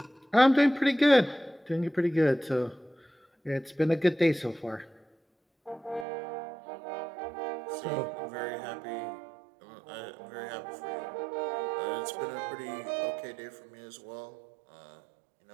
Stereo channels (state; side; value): drops out; left; at 6.1 s